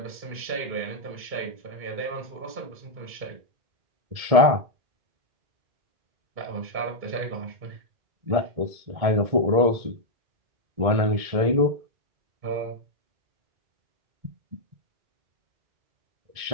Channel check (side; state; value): left; late; 1.7 ms